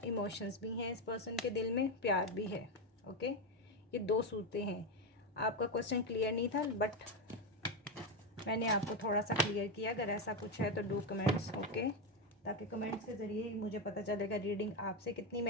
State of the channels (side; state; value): both; normal; correlation 0.09